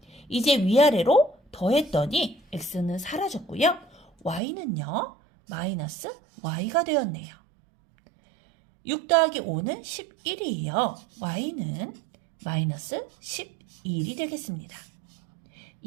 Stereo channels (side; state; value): left; drops out; at 4.4 s